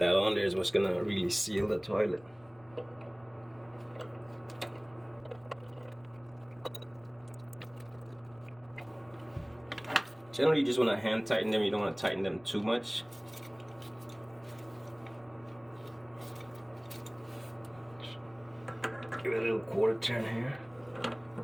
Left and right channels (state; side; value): noise; left; rumble, 27 dB below the sound